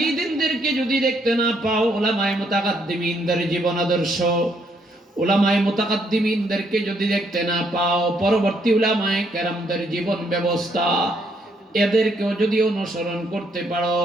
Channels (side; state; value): both; normal; correlation 0.72